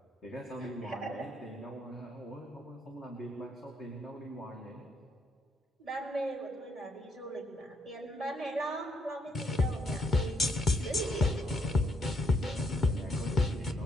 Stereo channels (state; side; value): normal; both; correlation 0.74